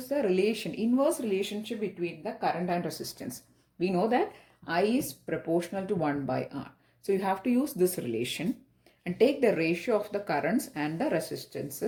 the relation, inverse relationship between the current and resistance. We know that I is proportional to 1 by R. So you have to use this relation and take the ratio of the currents and the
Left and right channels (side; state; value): both; identical; correlation 1.00